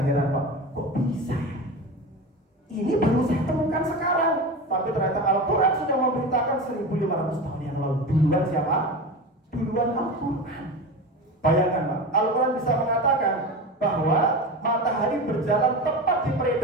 Pak, kok bisa ya? Ini baru saya temukan sekarang, tapi ternyata Al-Quran sudah memberitakan 1500 tahun yang lalu. Duluan siapa? Duluan Al-Quran. Bayangkan Pak, Al-Quran bisa mengatakan bahwa matahari berjalan tepat di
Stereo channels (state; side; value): normal; both; correlation 0.27